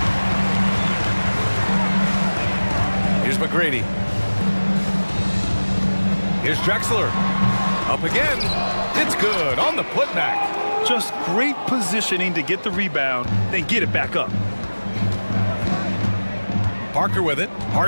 Here's McGrady. Here's Drexler. Up again. It's good on the putback. Just great positioning to get the rebound, then get it back up. Parker with it.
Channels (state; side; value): inverted; both; correlation -1.00